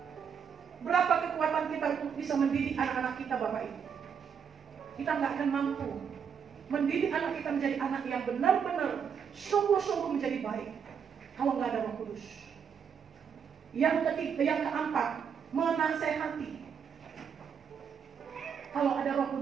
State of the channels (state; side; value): quieter; left; 7.1 dB